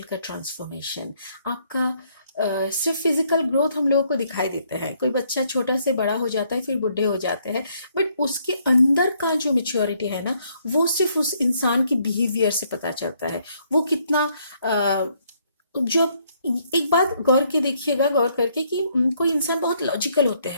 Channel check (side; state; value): both; inverted; correlation -0.69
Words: का ट्रांसफॉर्मेशन, आपका सिर्फ फिजिकल ग्रोथ हम लोगों को दिखाई देता है। कोई बच्चा छोटा से बड़ा हो जाता है, फिर बुढ़े हो जाते हैं, बट उसके अंदर का जो मेच्योरिटी है ना, वो सिर्फ उस इंसान की बिहेवियर से पता चलता है। वो कितना जो एक बात गौर करके कि कोई इंसान बहुत लॉजिकल होते